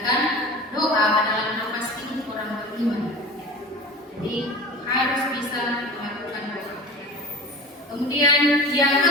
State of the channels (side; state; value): both; normal; correlation 0.35